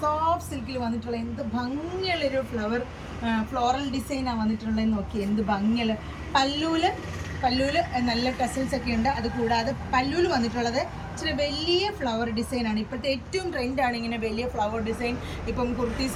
സിൽക്കിൽ വന്നിട്ടുള്ള എന്ത് ഭംഗിയുള്ളൊരു ഫ്ലോറൽ ഡിസൈനാണ് വന്നിട്ടുള്ളതെന്ന് നോക്കി. എന്ത് ഭംഗിയുള്ള പല്ലൂല് നല്ല ടെസൽസ് ഒക്കെ ഉണ്ട്. അതുകൂടാതെ പല്ലൂല് വന്നിട്ടുള്ളത് ഇച്ചിരി വലിയ ഫ്ലവർ ഡിസൈനാണ്. ഇപ്പോഴത്തെ ഏറ്റവും ട്രെൻഡാണ് ഇങ്ങനെ വലിയ ഫ്ലവർ ഡിസൈൻ. ഇപ്പം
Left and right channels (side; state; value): both; identical; correlation 1.00